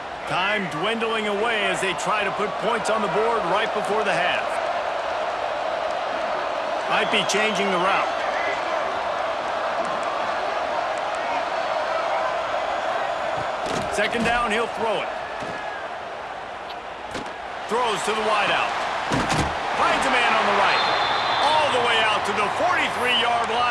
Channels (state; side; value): identical; both; correlation 1.00